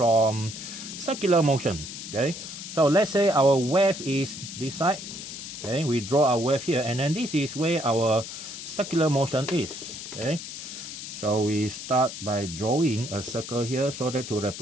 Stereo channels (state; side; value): noise; left; hiss, 9 dB below the sound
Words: circular motion. Okay, so let's say our wave is this side. Okay, we draw our wave here, and then this is where our circular motion is. Okay, so we start by drawing a circle here so that to